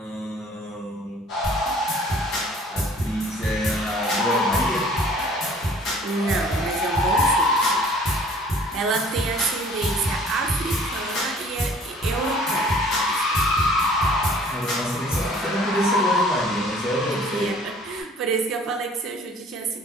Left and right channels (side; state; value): both; normal; correlation 0.53